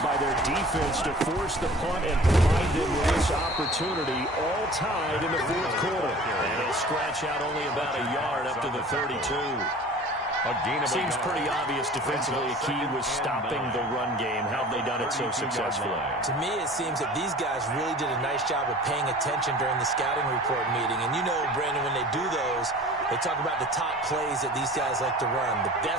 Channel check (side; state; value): both; normal; correlation 0.44